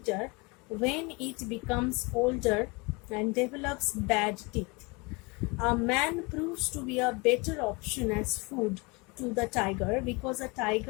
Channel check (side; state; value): right; quieter; 27.7 dB